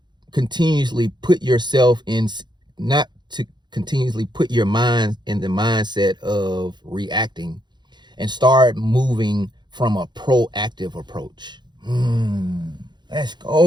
continuously put yourself in, not to continuously put your mind in the mindset of reacting, and start moving from a proactive approach. Let's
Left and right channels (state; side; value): late; left; 0.21 ms